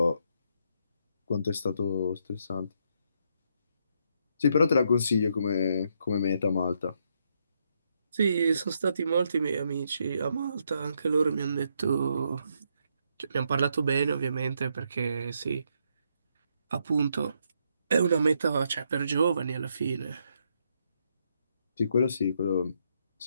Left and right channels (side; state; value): both; inverted; correlation -0.76